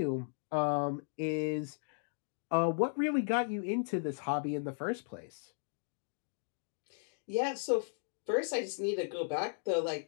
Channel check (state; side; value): silent; right; digital silence